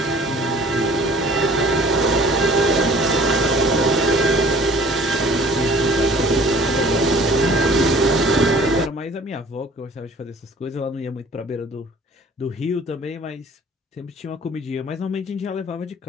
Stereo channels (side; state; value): both; normal; correlation 0.50